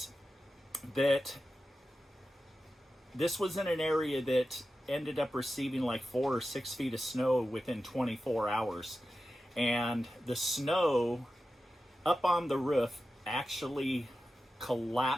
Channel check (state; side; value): normal; both; correlation 0.92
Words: that this was in an area that ended up receiving like 4 or 6 feet of snow within 24 hours. And the snow up on the roof actually